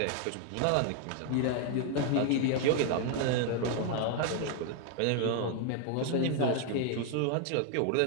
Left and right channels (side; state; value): both; different; correlation 0.00